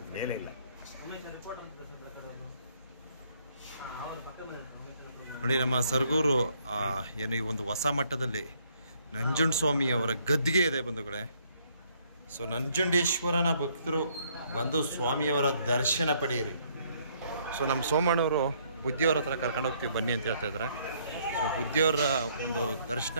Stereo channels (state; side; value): inverted; both; correlation -0.67